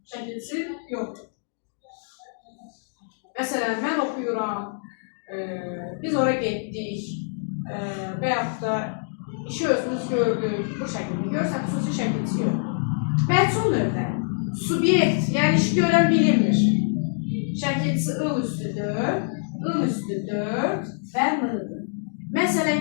şəkilsi yoxdur. Məsələn, mən oxuyuram, biz oraya getdik və yaxud da işi özümüz gördük, bu şəkildə görürsən, xüsusi şəkilsi yox. Məhsul növdə, subyekt, yəni işi görən bilinmir. Şəkilsi ıl üstü 4 və m-dır. Məsələn,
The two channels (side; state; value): right; silent; digital silence